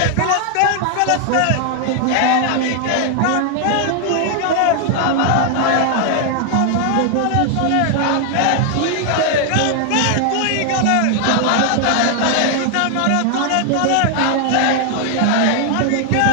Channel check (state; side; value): different; both; correlation 0.00